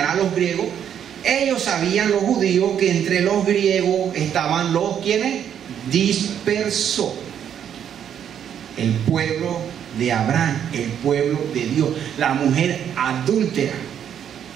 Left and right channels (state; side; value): quieter; left; 9.1 dB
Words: a los griegos. Ellos sabían, los judíos, que entre los griegos estaban los, ¿quiénes? Dispersos. El pueblo de Abraham, el pueblo de Dios, la mujer adúltera.